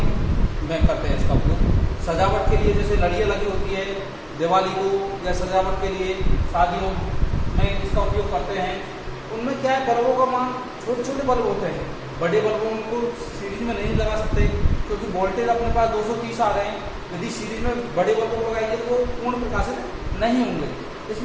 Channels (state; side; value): identical; both; correlation 1.00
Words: में करते हैं इसका उपयोग। सजावट के लिए जैसे लड़ियाँ लगी होती है दिवाली को, या सजावट के लिए शादियों में इसका उपयोग करते हैं। उनमें क्या है, बल्बों का मान छोटे छोटे बल्ब होते हैं, बड़े बल्बों को सीरीज में नहीं लगा सकते क्योंकि वोल्टेज अपने पास 230 आ रहे हैं। यदि सीरीज में बड़े बल्बों को लगाएंगे तो पूर्ण प्रकाशित नहीं होंगे,